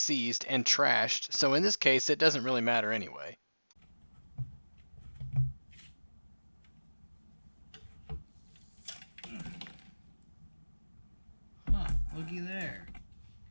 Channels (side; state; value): both; inverted; correlation -1.00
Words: and trashed, so in this case it doesn't really matter anyway. Huh, looky there.